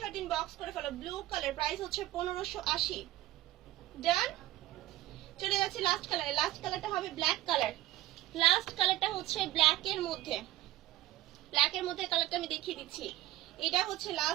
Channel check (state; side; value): quieter; left; 15.7 dB